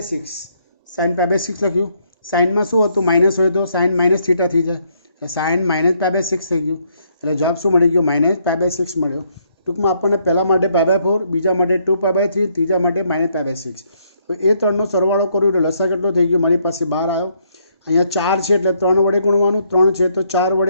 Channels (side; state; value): both; inverted; correlation -0.71